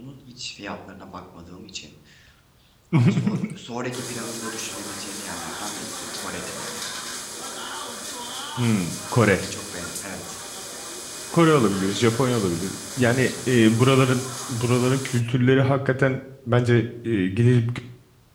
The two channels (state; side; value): identical; both; correlation 1.00